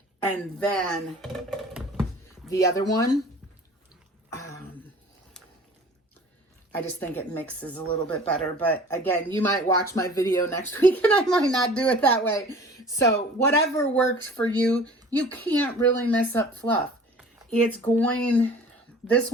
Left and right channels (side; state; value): both; normal; correlation 0.45